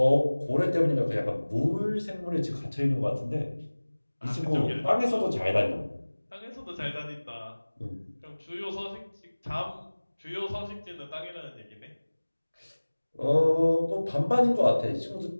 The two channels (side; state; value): both; inverted; correlation -1.00